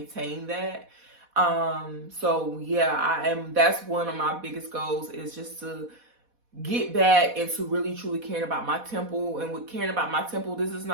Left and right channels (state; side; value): late; left; 4.1 ms